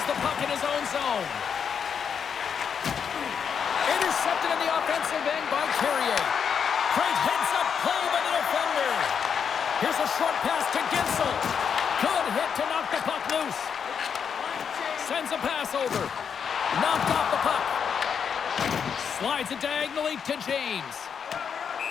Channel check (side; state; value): right; quieter; 7.1 dB